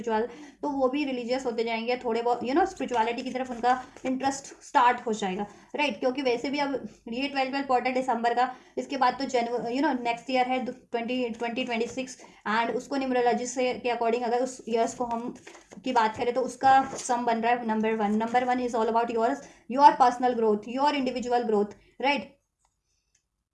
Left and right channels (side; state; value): both; identical; correlation 1.00